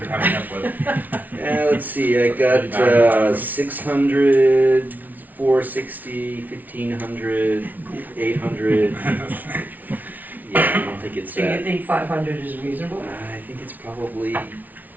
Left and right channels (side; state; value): left; late; 0.079 ms